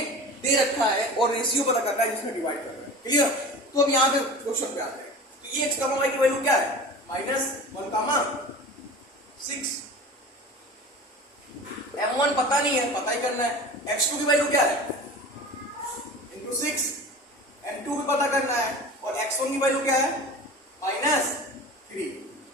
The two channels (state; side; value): normal; both; correlation 0.36